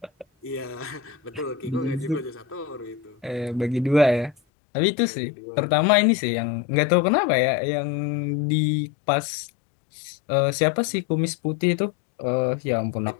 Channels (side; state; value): right; drops out; at 4.4 s